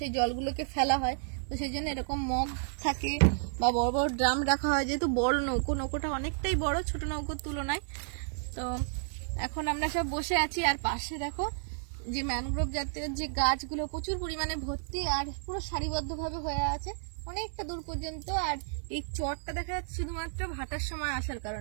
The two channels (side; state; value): left; silent; digital silence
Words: জলগুলোকে ফেলা হয়, তো সেই জন্য এরকম মগ থাকে বা বড় বড় ড্রাম রাখা হয়। যেহেতু বড় নৌকোটা অনেকটাই বড় ছোট নৌকোর তুলনায়। তো এখন আমরা সব বসে আছি, আর পাশে দেখো যে ম্যানগ্রোভ জাতীয় যে গাছগুলো প্রচুর পরিমাণে ভর্তি, আর পুরো সারিবদ্ধভাবে হয়ে আছে অনেকটা দূর পর্যন্ত। আর এই চরটা দেখা যাচ্ছে শুধুমাত্র ভাটার সময় আসার